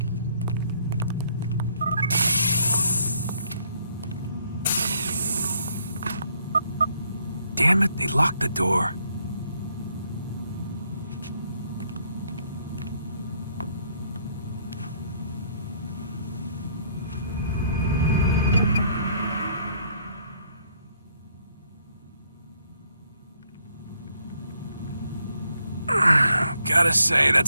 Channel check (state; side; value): inverted; both; correlation -0.69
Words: Damn it, they locked the door. Gotta say,